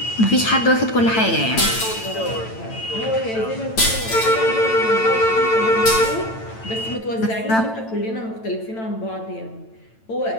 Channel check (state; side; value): late; right; 9.0 ms